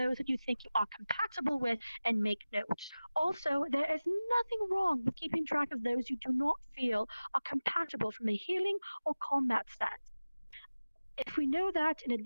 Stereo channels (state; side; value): inverted; both; correlation -0.98